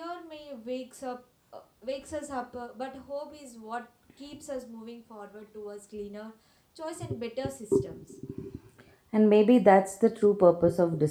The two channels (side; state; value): both; identical; correlation 1.00